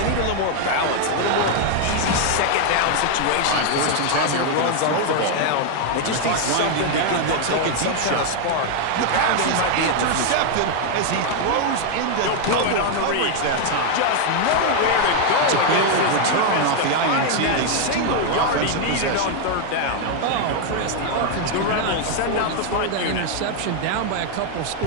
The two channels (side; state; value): both; different; correlation 0.00